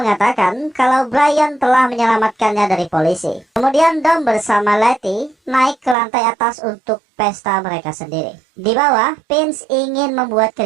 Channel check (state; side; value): drops out; left; at 6.0 s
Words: kalau Brian telah menyelamatkannya dari polisi. Kemudian Dom bersama Letty naik ke lantai atas untuk pesta mereka sendiri. Di bawah, Vince ingin membuat